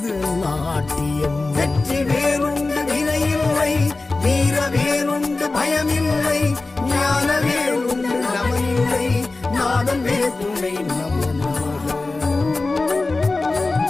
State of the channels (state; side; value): quieter; right; 3.4 dB